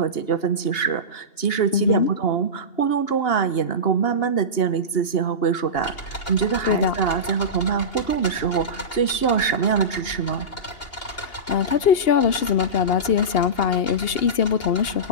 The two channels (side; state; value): right; late; 2.8 ms